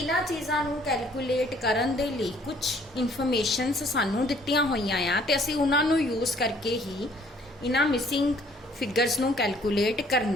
चीज़ां नूं कैलकुलेट करन दे लई कुछ इन्फॉर्मेशनस सानूं दित्तियां होईयां आ ते असीं उन्हां नूं यूज़ करके ही इन्हां मिसिंग फिगर्स नूं कैलकुलेट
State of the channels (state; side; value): normal; both; correlation 0.60